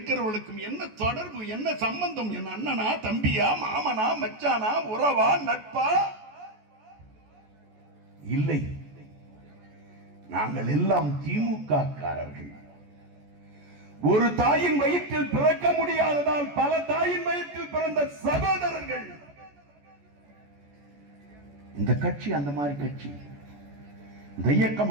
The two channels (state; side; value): late; left; 14 ms